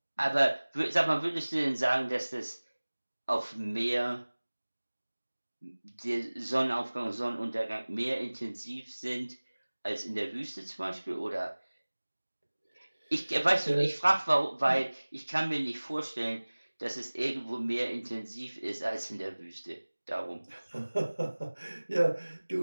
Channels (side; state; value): both; inverted; correlation -1.00